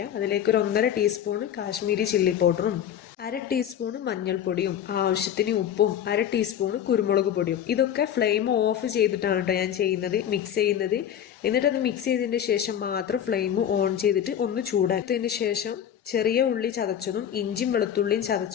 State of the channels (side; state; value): right; quieter; 9.6 dB